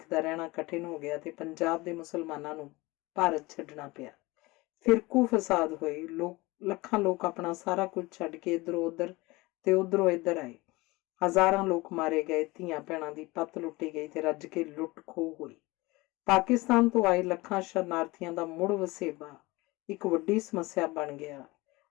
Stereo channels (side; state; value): right; quieter; 22.1 dB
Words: ਦਾ ਰਹਿਣਾ ਕਠਿਨ ਹੋ ਗਿਆ ਤੇ ਪੰਜਾਬ ਦੇ ਮੁਸਲਮਾਨਾਂ ਨੂੰ ਭਾਰਤ ਛੱਡਣਾ ਪਿਆ। ਫਿਰਕੂ ਫਸਾਦ ਹੋਏ। ਲੱਖਾਂ ਲੋਕ ਆਪਣਾ ਸਾਰਾ ਕੁਝ ਛੱਡ ਕੇ ਇੱਧਰੋਂ ਉੱਧਰ ਤੇ ਉੱਧਰੋਂ ਇੱਧਰ ਆਏ। ਹਜ਼ਾਰਾਂ ਲੋਕ ਮਾਰੇ ਗਏ, ਧੀਆਂ ਭੈਣਾਂ ਦੀ ਪੱਤ ਲੁੱਟੀ ਗਈ ਤੇ ਰੱਜ ਕੇ ਲੁੱਟ ਖੋਹ ਹੋਈ। ਪਾਕਿਸਤਾਨ ਤੋਂ ਆਏ ਲੱਖਾਂ ਸ਼ਰਨਾਰਥੀਆਂ ਦਾ ਮੁੜ ਵਸੇਬਾ ਇੱਕ ਵੱਡੀ ਸਮੱਸਿਆ ਬਣ ਗਿਆ।